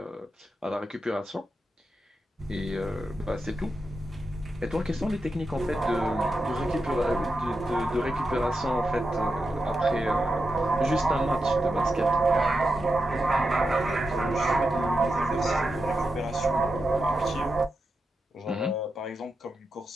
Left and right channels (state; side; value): normal; both; correlation 0.88